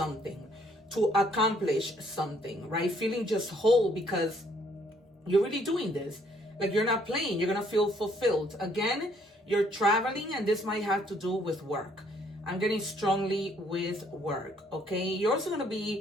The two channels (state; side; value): normal; both; correlation 0.65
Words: to accomplish something, right? Feeling just whole because you're really doing this. Like you're not playing, you're going to feel fulfilled. Again, you're traveling, and this might have to do with work. I'm getting strongly with work, okay? You're also going to